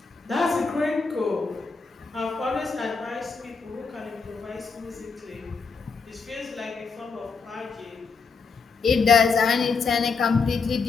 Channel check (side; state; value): right; quieter; 4.9 dB